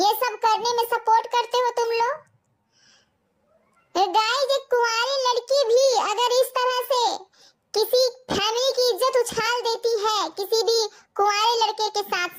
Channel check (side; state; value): both; identical; correlation 1.00